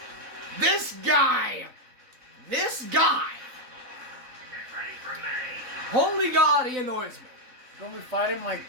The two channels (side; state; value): left; late; 3.9 ms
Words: This guy! Get ready for me. Holy God, he annoys me. Don't we fight him like